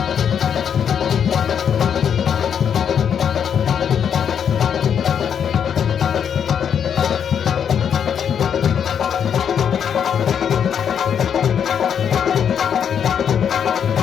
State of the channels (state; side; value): quieter; right; 8.0 dB